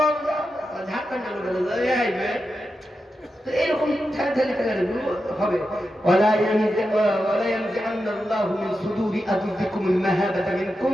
ঝাড়খণ্ডের লোকেরা এরকম হবে। ولا ينزعن الله من صدور أعدائكم المهابة منكم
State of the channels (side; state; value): both; normal; correlation 0.89